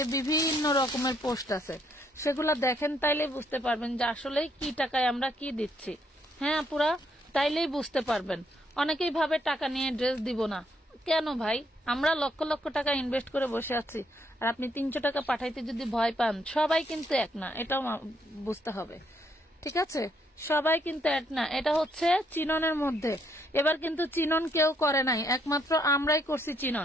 বিভিন্ন রকমের পোস্ট আছে, সেগুলা দেখেন, তাইলেই বুঝতে পারবেন যে আসলে কি টাকায় আমরা কি দিচ্ছি। হ্যাঁ আপুরা, তাইলেই বুঝতে পারবেন। অনেকেই ভাবে টাকা নিয়ে ড্রেস দিব না, কেন ভাই? আমরা লক্ষ লক্ষ টাকা ইনভেস্ট করে বসে আছি, আর আপনি 300 টাকা পাঠাইতে যদি ভয় পান, সবাই কিন্তু এক না, এটাও বুঝতে হবে, ঠিক আছে? সবাই কিন্তু এক না। এটা হচ্ছে চিননের মধ্যে, এবার কিন্তু চিনন কেউ করে নাই, একমাত্র আমরাই করছি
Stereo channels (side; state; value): both; normal; correlation 0.72